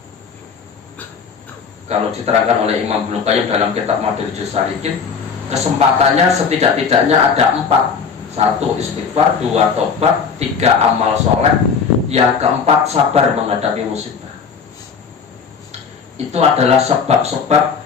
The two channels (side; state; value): right; quieter; 6.0 dB